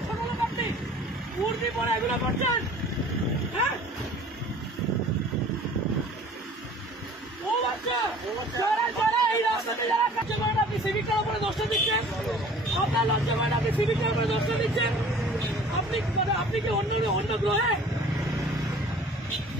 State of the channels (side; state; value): both; normal; correlation 0.48